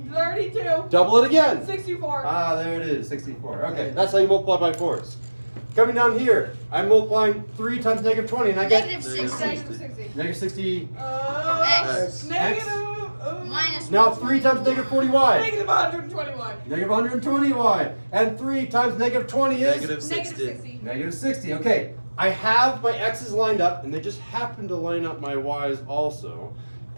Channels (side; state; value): both; inverted; correlation -1.00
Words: 32. Double it again. 64. Ah, there it is, 64. Okay, that's how you multiply by 4s. Coming down here, I'm multiplying 3 times negative 20, and I get Negative Negative 60. Negative 60. negative 60. X. Negative. Minus Now 3 times negative 40y. Negative 121. Negative 120y. And 3 times negative 20 is? Negative 60. Negative 60. Negative 60. Okay, I have my x's lined up, and they just happen to line up my y's also.